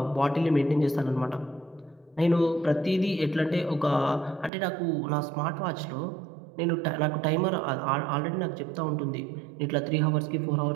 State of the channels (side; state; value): left; drops out; at 4.5 s